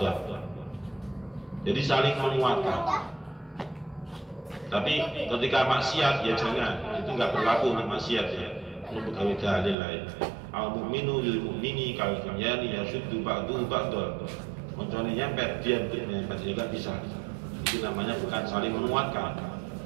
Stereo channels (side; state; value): left; drops out; at 9.8 s